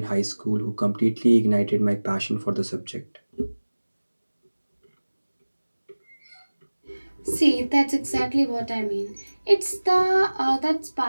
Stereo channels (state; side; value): inverted; both; correlation -1.00